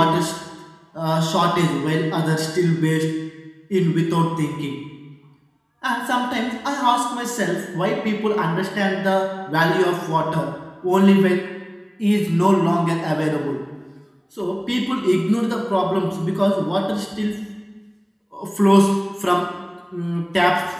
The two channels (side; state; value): both; identical; correlation 1.00